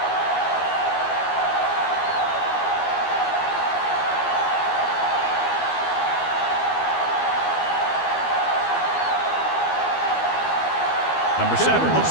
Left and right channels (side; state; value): right; late; 12 ms